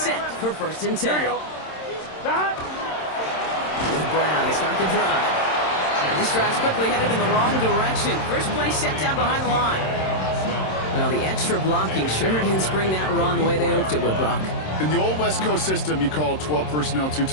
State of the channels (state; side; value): late; right; 27 ms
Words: for first and 10. Here we go. Stop. With Brown to start the drive. And this drive's quickly headed in the wrong direction. First play set down behind the line. Well, the extra blocking sure didn't spring that run the way they hoped it would, Brock. In the old West Coast system, you call 12 personnel, 2